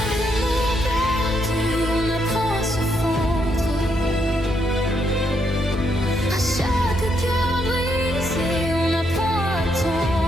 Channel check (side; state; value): both; normal; correlation 0.77